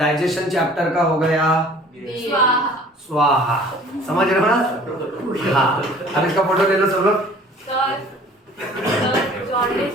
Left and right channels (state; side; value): normal; both; correlation 0.50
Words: चैप्टर का हो गया स्वाहा, समझ रहे हो ना? हाँ, अब इसका फोटो ले लो सब लोग। जॉन्डिस